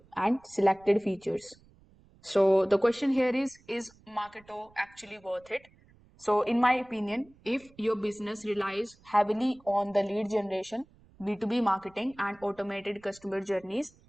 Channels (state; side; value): noise; right; rumble, 28 dB below the sound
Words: and selected features. So the question here is Marketo actually worth it? So in my opinion, if your business relies heavily on the lead generation, B2B marketing and automated customer journeys,